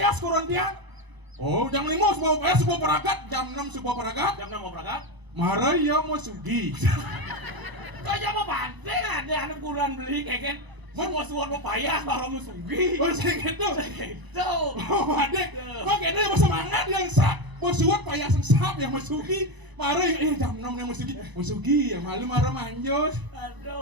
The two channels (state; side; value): late; left; 1.0 ms